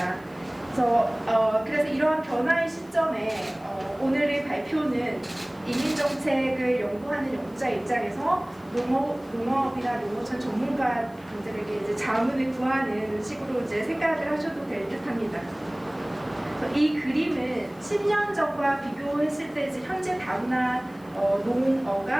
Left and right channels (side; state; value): left; noise; hiss, 29 dB below the sound